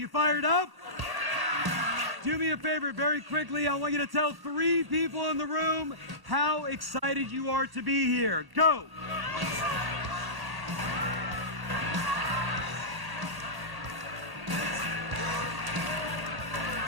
fired up? Do me a favor very quickly. I want you to tell 3 people in the room how excited you are to be here. Go!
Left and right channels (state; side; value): late; left; 1.1 ms